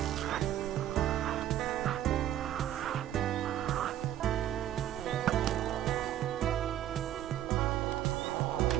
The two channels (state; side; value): quieter; left; 11.9 dB